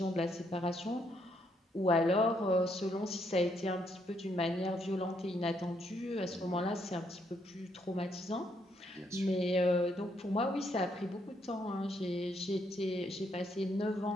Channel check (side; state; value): both; normal; correlation 0.74